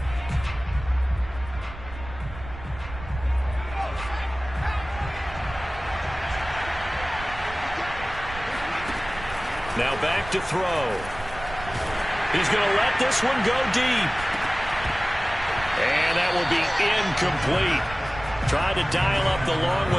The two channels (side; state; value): right; noise; rumble, 13 dB below the sound